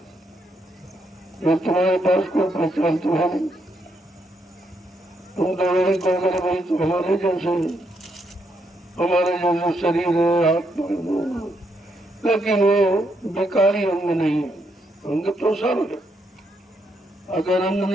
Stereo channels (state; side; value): normal; both; correlation 0.77